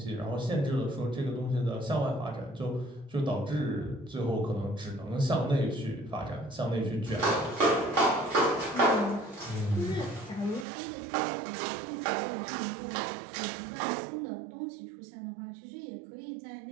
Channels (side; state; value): left; drops out; at 10.7 s